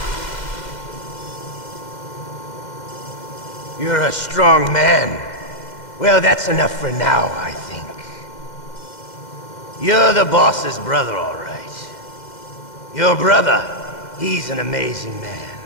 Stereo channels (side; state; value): right; late; 2.1 ms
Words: You're a strong man. Well, that's enough for now, I think. You're the boss's brother, all right. Your brother, he's an amazing man.